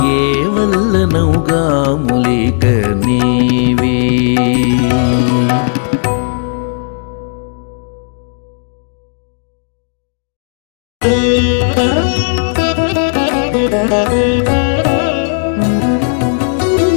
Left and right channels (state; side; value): silent; right; 62 dB below the other